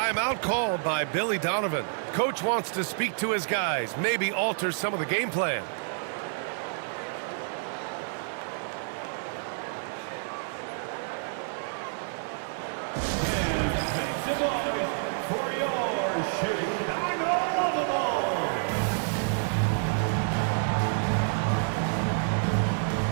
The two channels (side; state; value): left; silent; digital silence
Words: called by Billy Donovan. Coach wants to speak to his guys, maybe alter some of the game plan. Make some noise for